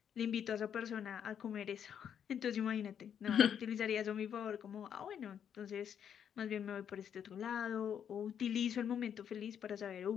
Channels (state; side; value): quieter; right; 8.5 dB